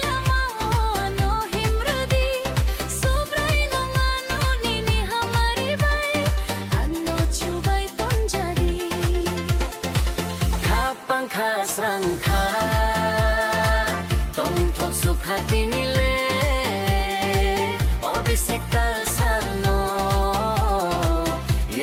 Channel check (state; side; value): identical; both; correlation 1.00